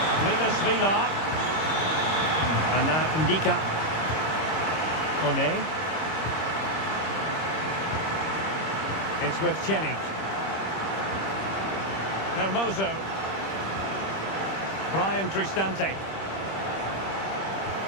Milas Vila. And now Ndika. Kone. It's with Celik. Hermoso. Brian Cristante.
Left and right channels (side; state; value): right; late; 26 ms